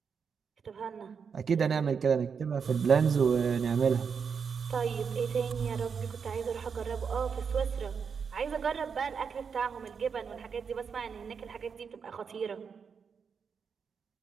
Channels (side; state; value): left; quieter; 6.2 dB